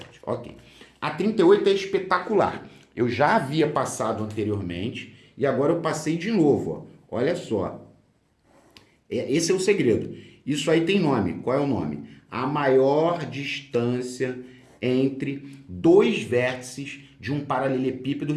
Ok. A 38 é espetacular. Eu já havia passado anteriormente e agora eu passei de novo. Ó. Olha só. Esse é o segredo. Isso aí tem nome. Qual é o nome? A maior distância entre dois vértices de um paralelepípedo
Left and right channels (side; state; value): both; identical; correlation 1.00